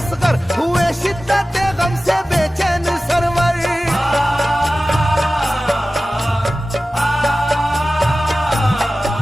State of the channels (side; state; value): both; normal; correlation 0.95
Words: हुए शिद्दत गम से बेचैन सरवर।